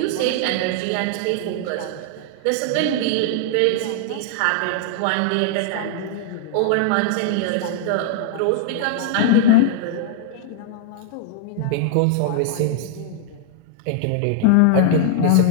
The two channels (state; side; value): different; both; correlation -0.01